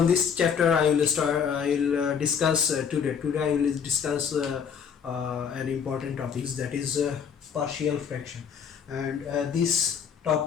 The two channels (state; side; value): quieter; right; 7.1 dB